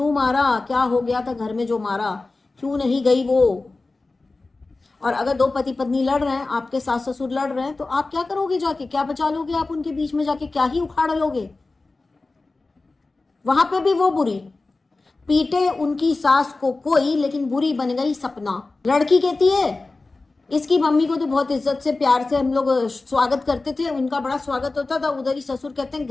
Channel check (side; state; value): right; quieter; 3.4 dB